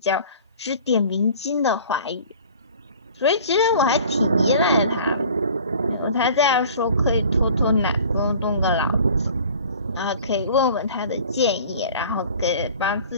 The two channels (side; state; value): both; inverted; correlation -0.46